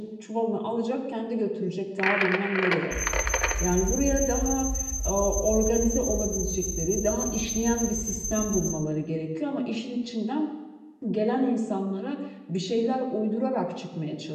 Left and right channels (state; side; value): identical; both; correlation 1.00